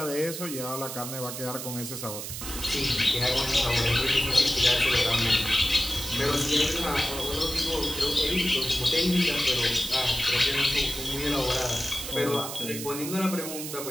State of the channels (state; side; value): noise; right; hiss, 7 dB below the sound